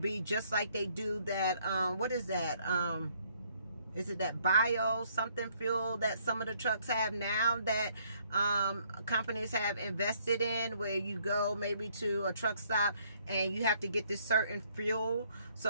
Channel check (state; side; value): inverted; both; correlation -0.66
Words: be just like they do that, what is that? Is it that bio something fuel that some of the trucks have now that companies have invested in, where you go maybe to a truck stop and you have to get this certain fuel?